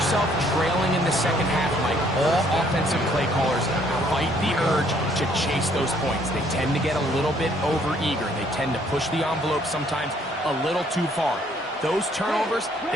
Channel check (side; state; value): both; normal; correlation 0.64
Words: trailing in the second half, Mike, all offensive play callers fight the urge to chase those points. They tend to get a little bit over-eager. They tend to push the envelope sometimes a little too far. Those turnovers,